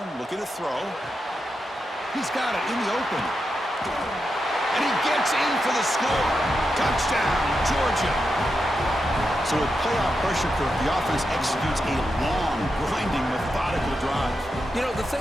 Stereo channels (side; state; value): both; normal; correlation 0.87